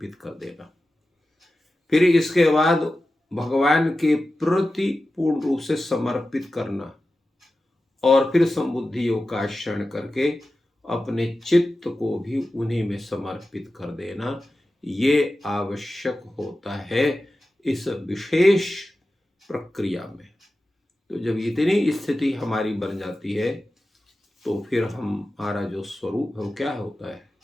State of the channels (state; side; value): normal; both; correlation 0.94